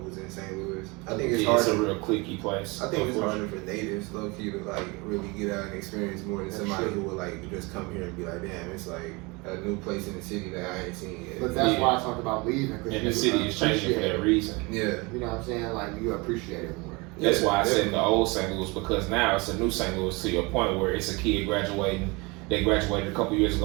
in St. Louis. I think it's hard. It's a real cliquey place. I think it's harder for natives, low key, to like really get out and experience more than somebody who would like just come here and be like, damn, it's like a new place in the city that I ain't seen yet. But that's why I talked about leaving. And the city is changing for that reason. Yeah. You know what I'm saying? Like you appreciate it more. That's why I said the old St. Louis, because now it's a new St. Louis to your point where it's a kid graduating. They graduated a couple years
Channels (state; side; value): quieter; left; 26.4 dB